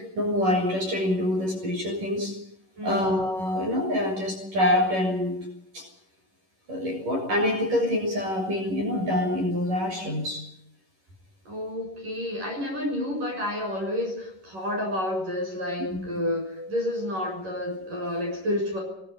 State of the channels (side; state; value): left; late; 11 ms